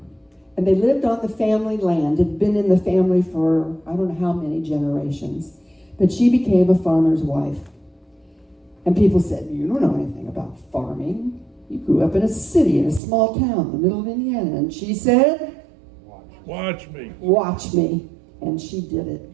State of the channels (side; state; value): left; drops out; at 13.0 s